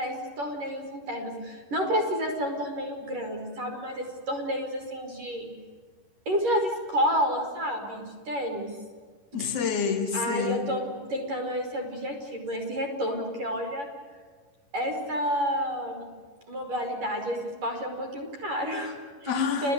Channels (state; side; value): late; left; 11 ms